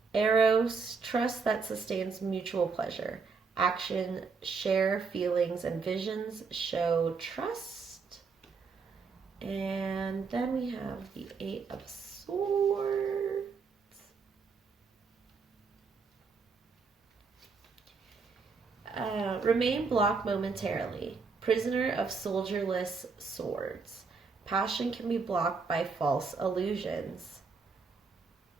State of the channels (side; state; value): left; quieter; 4.9 dB